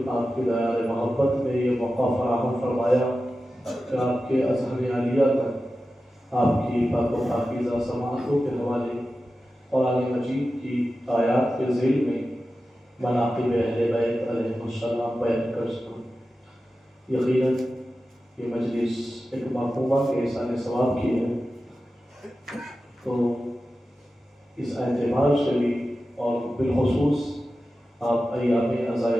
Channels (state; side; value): normal; both; correlation 0.93